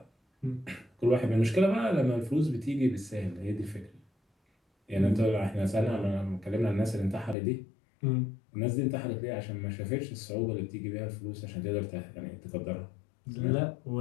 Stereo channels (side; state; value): right; drops out; at 7.4 s